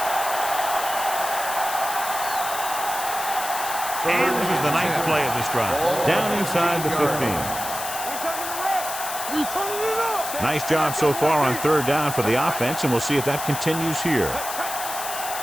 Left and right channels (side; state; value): left; noise; hiss, 7 dB below the sound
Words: And this is the 9th play of this drive. Down inside the 15. We turning it up. Nice job so far on 3rd down for the offense, and we'll see if that continues here.